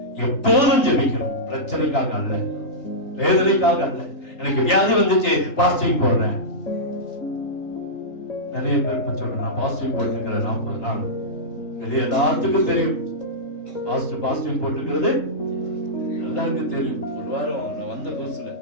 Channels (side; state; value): right; late; 3.3 ms